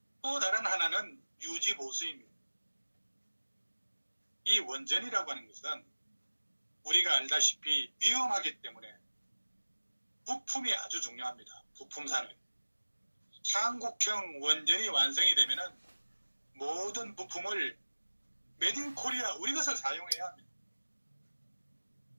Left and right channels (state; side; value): inverted; both; correlation -1.00